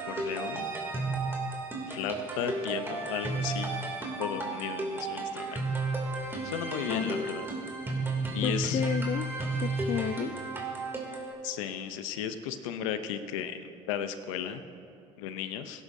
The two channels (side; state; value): both; normal; correlation 0.46